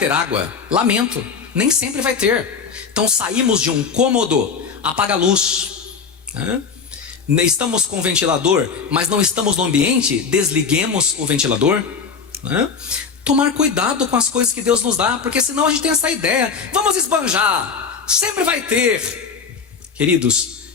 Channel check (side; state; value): right; quieter; 5.7 dB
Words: água. Lamento, nem sempre vai ter. Então saímos de um cômodo, apaga a luz, estamos com ventilador, mas não estamos no ambiente, desliguemos o ventilador, Tomar cuidado com as coisas que Deus nos dá, porque senão a gente tem essa ideia: vamos esbanjar, sempre vai ter. Queridos,